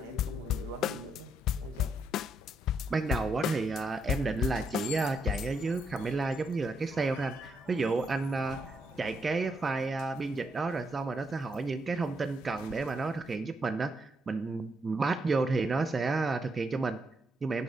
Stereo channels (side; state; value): both; normal; correlation 0.78